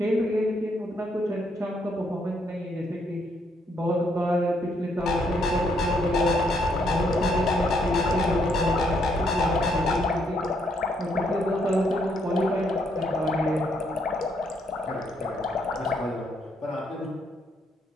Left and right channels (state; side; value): normal; both; correlation 0.73